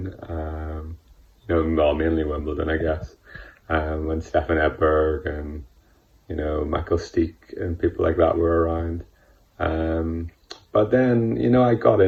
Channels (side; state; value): both; identical; correlation 1.00